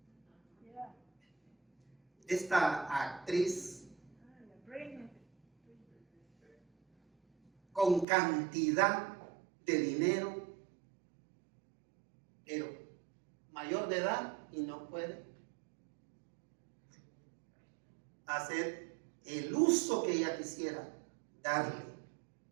Esta actriz con cantidad de dinero, pero mayor de edad y no puede hacer el uso que ella quisiera darle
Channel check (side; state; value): left; drops out; at 8.1 s